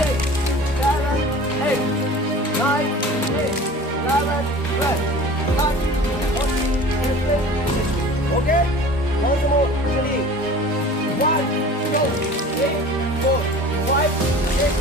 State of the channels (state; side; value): normal; both; correlation 0.41